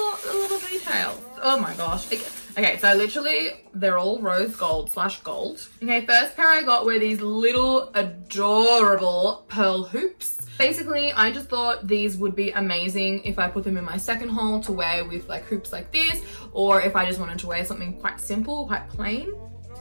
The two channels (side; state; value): both; inverted; correlation -1.00